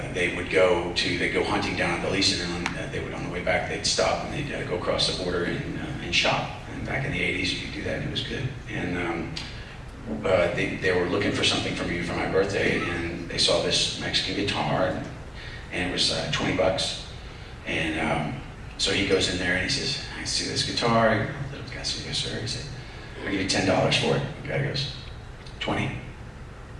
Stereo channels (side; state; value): both; identical; correlation 1.00